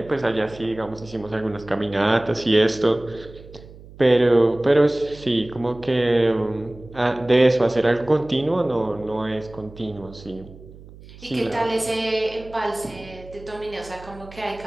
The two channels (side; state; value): right; noise; hum, 19 dB below the sound